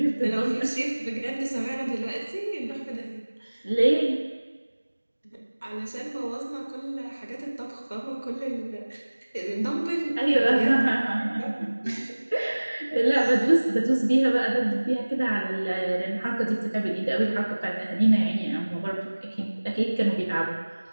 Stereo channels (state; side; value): inverted; both; correlation -1.00